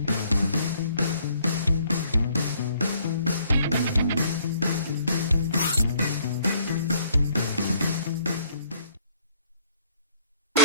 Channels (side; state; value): both; inverted; correlation -0.63